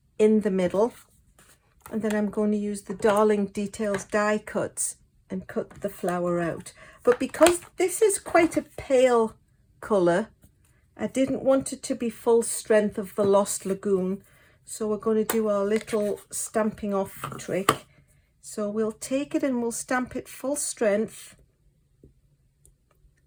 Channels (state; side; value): identical; both; correlation 1.00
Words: in the middle, and then I'm going to use the Darling Details die cuts and cut the flower out. But because this is quite a pale colour, I didn't want it to be full strength of the Lost Lagoon, so we're going to do our little stamping off trick. So we'll take it and we'll stamp it full strength,